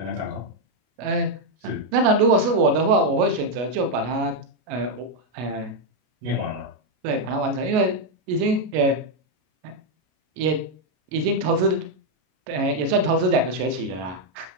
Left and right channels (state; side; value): late; left; 33 ms